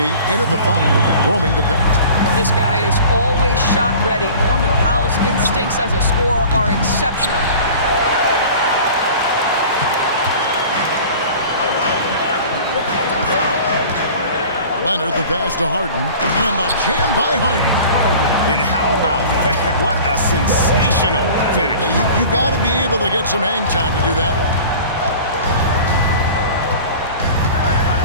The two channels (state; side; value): inverted; both; correlation -0.42